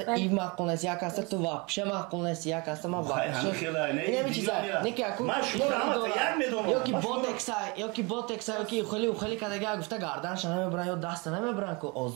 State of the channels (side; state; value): left; quieter; 28.6 dB